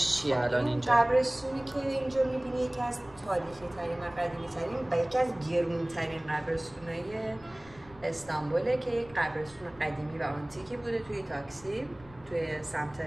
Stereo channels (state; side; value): noise; left; rumble, 23 dB below the sound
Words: چیه الان اینجا؟ قبرستونی که اینجا میبینی یکی از تاریخی ترین و قدیمی ترین و یکی از گرون ترین قبرستونای استانبوله که یک قبرستون قدیمی و آنتیکی بوده توی تاکسی، توی سمت